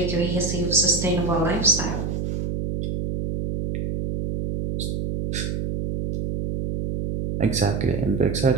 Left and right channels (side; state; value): right; noise; hum, 2 dB below the sound